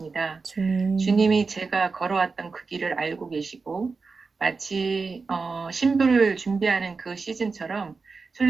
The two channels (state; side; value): quieter; left; 4.4 dB